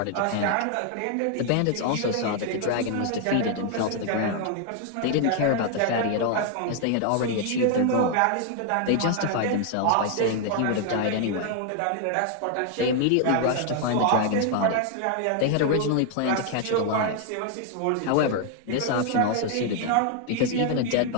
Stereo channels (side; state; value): both; different; correlation 0.00